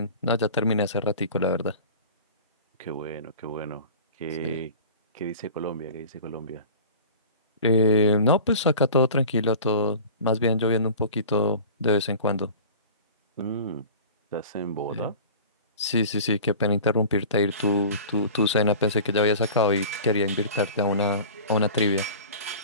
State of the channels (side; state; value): both; inverted; correlation -0.39